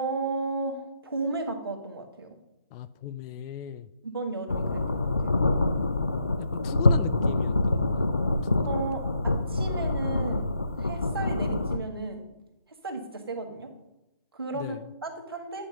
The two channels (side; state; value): both; inverted; correlation -0.76